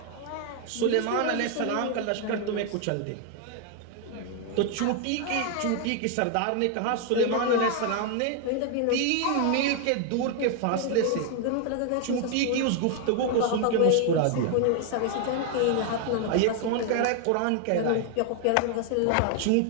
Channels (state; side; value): different; both; correlation 0.00